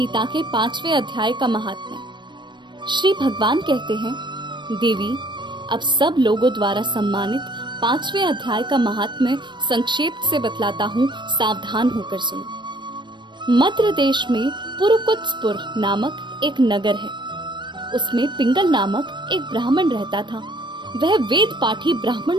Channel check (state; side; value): late; left; 0.22 ms